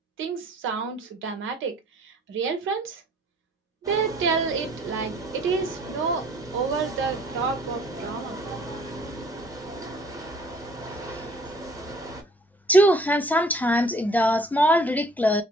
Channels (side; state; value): both; normal; correlation 0.56